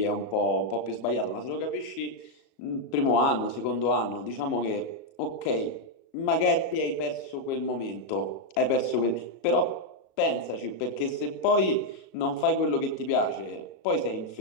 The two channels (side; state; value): right; late; 37 ms